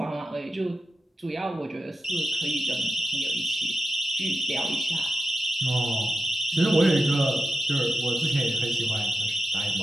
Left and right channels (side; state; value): both; normal; correlation 0.89